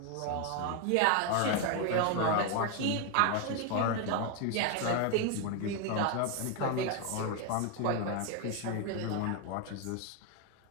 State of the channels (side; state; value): both; different; correlation 0.01